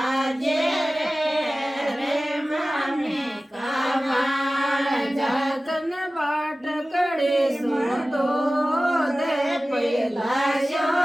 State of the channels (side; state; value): both; normal; correlation 0.97